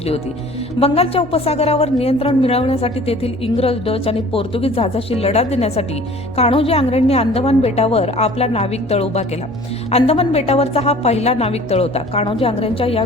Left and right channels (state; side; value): noise; left; hum, 22 dB below the sound